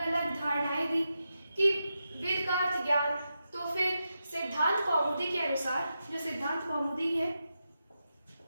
अलग धारणाएं दी कि वेद का अर्थ ज्ञान। तो फिर सिद्धांत कौमुदी के अनुसार, जो सिद्धांत कौमुदी है,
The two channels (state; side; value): inverted; both; correlation -0.88